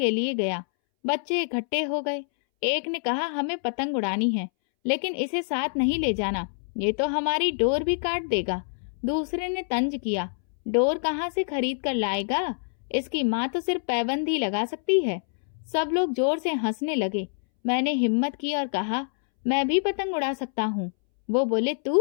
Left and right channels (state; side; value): silent; right; 61 dB below the other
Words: लिए गया। बच्चे इकट्ठे हो गए। एक ने कहा, हमें पतंग उड़ानी है लेकिन इसे साथ नहीं ले जाना, ये तो हमारी डोर भी काट देगा। दूसरे ने तंज किया, डोर कहाँ से खरीद कर लाएगा, इसकी माँ तो सिर्फ पैबंद ही लगा सकती है। सब लोग जोर से हंसने लगे। मैंने हिम्मत की और कहा, मैं भी पतंग उड़ा सकता हूँ। वो बोले,